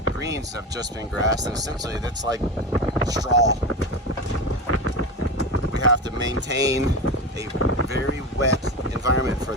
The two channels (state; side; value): normal; both; correlation 0.22